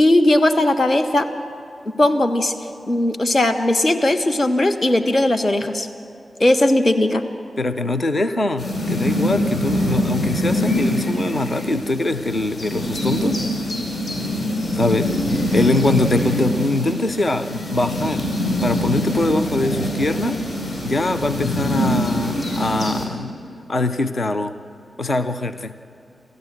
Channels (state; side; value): normal; both; correlation 0.82